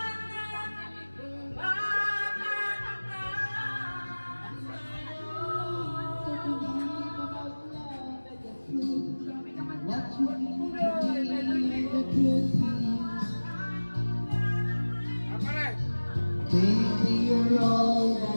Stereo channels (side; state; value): both; inverted; correlation -1.00